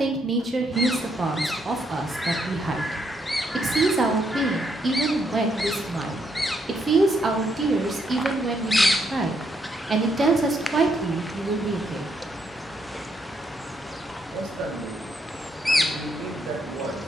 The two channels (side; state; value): both; normal; correlation 0.75